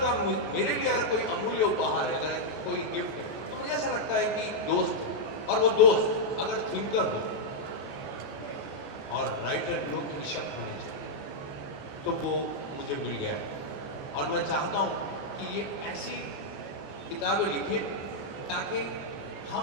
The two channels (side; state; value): right; late; 14 ms